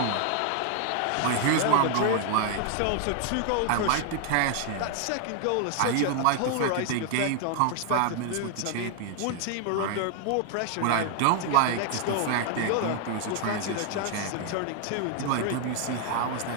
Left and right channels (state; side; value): different; both; correlation 0.00